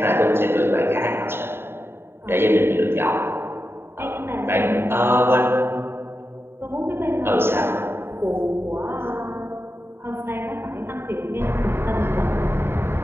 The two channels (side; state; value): left; late; 0.11 ms